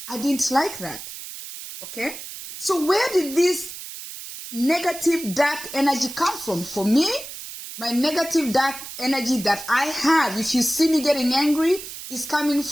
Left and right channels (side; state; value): right; noise; hiss, 11 dB below the sound